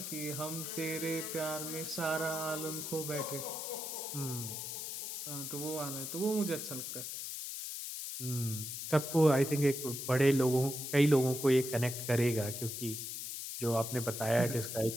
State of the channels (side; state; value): left; noise; hiss, 6 dB below the sound